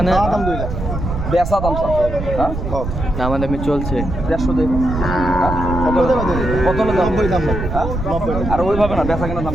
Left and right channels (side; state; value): right; noise; rumble, 5 dB below the sound